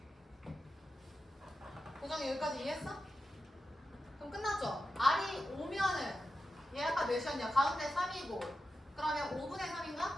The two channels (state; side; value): normal; both; correlation 0.91